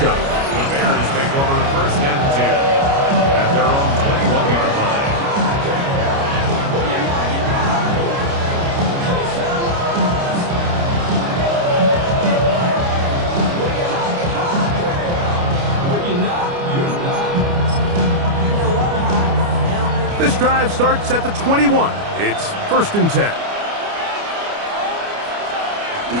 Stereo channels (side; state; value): left; late; 29 ms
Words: shop. The Bears take over 1st and 10 at their own 21-yard line. This drive starts at the 21. It's 1st and 10.